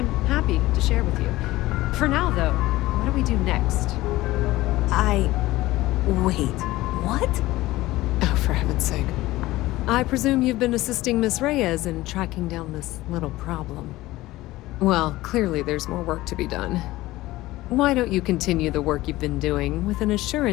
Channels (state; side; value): quieter; right; 17.8 dB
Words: happy to share with you. For now, though, what do we do next? Wait, what? Oh, for heaven's sake. I presume you've been assisting Miss Reyes in tracking down this little problem. Well, clearly there's more work to be done. Why don't you continue the work you've been doing with an